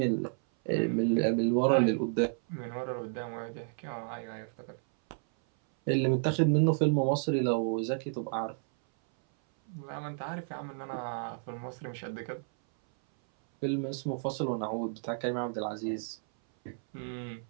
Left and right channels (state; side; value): silent; left; 57 dB below the other